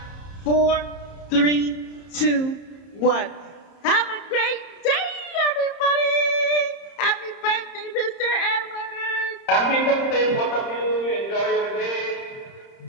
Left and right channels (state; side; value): late; right; 30 ms